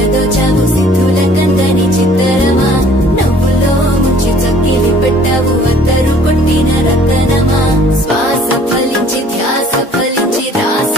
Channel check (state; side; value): normal; both; correlation 0.55